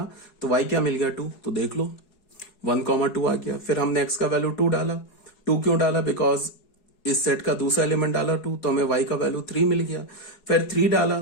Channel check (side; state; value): right; late; 4.7 ms